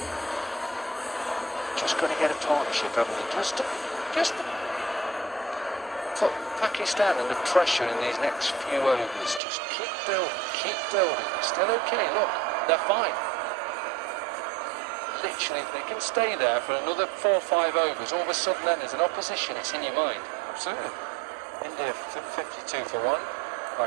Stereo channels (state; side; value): drops out; left; at 9.4 s